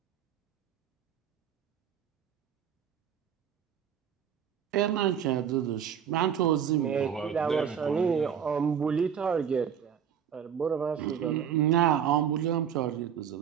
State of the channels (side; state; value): left; quieter; 8.3 dB